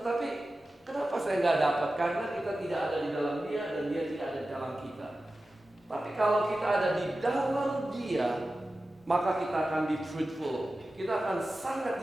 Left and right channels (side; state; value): both; normal; correlation 0.94